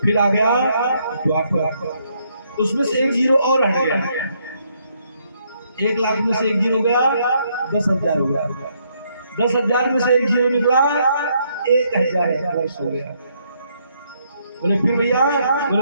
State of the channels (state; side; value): inverted; both; correlation -0.73